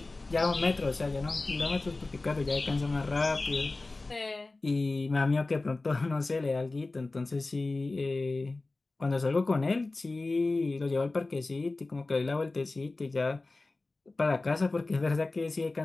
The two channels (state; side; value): quieter; right; 3.3 dB